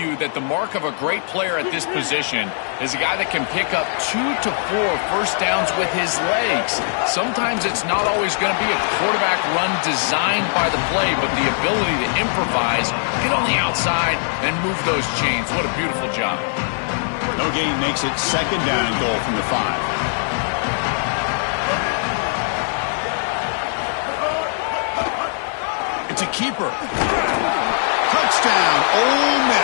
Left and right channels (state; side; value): silent; right; digital silence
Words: that the mark of a great player at this position is a guy that can pick up 2 to 4 first downs with his legs. Sometimes it's not always going to be a quarterback run designed by the play, but the ability to improvise, get on the outside, and move those chains. What a beautiful job. No gain makes it second down and goal from the 5. It's a keeper. Touchdown, Ole